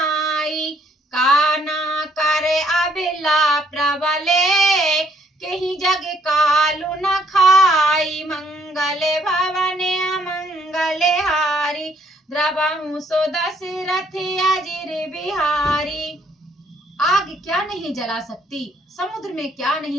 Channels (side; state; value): both; normal; correlation 0.67